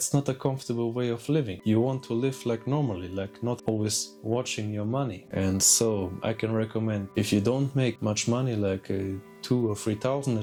not a comfortable way of living. You want to live like normally, like not always watching your money. And so I can recommend, if you don't make much money, like 2,000 or 3,000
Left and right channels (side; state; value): both; identical; correlation 1.00